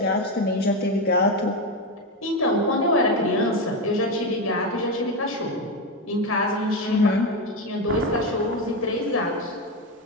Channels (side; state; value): both; normal; correlation 0.13